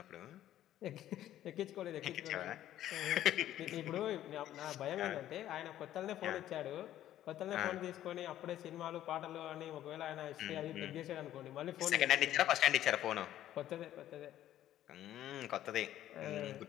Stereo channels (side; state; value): right; quieter; 12.5 dB